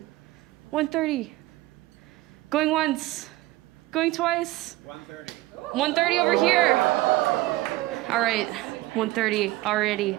130. Going once. Going twice. 130. 130 over here. All right, 130 already.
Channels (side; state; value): left; quieter; 18.2 dB